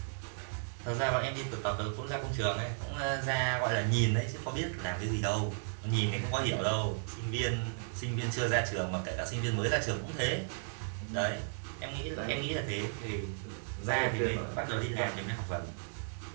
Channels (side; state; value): left; silent; digital silence